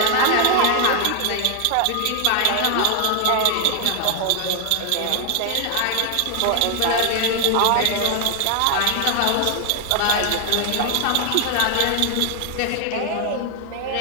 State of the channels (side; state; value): both; different; correlation 0.00